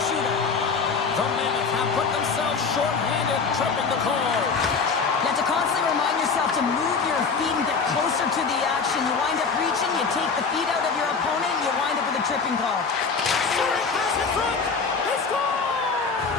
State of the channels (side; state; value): right; quieter; 5.1 dB